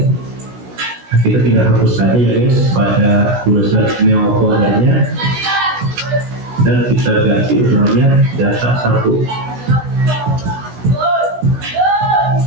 kita tinggal hapus saja ya guys pada tulisan Neo foldernya dan kita ganti namanya data 1.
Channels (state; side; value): late; left; 16 ms